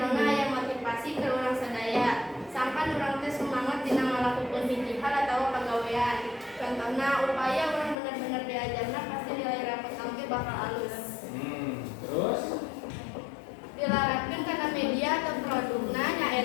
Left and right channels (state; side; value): drops out; right; at 8.0 s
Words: aya motivasi ke urang sadaya. Sampan urang teh semangat dina ngalakukeun hiji hal atawa pagawean. Contohna upaya urang bener-bener diajarna pasti nilai rapot teh bakal alus. Terus Dilarapkeun kana media atau produkna